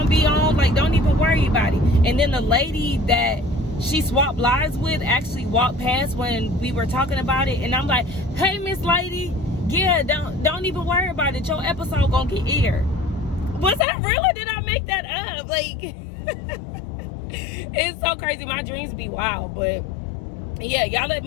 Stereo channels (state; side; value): drops out; right; at 13.9 s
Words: be on, like don't even worry about it. And then the lady that she swapped lives with actually walked past when we were talking about it, and I'm like, hey Miss Lady, yeah, don't even worry about it, your episode gonna get aired. Was that real or did I make that up? Like it's so crazy, my dreams be wild. But yeah, y'all let